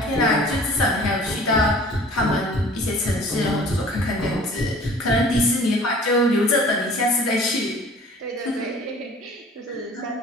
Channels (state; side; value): normal; both; correlation 0.48